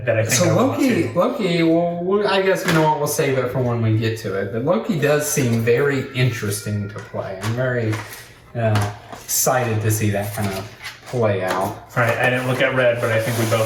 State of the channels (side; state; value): both; identical; correlation 1.00